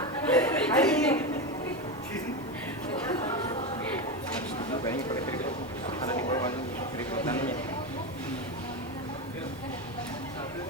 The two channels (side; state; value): both; normal; correlation 0.16